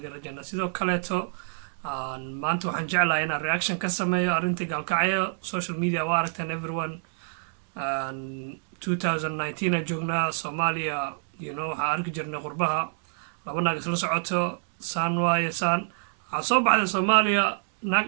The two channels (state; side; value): silent; left; digital silence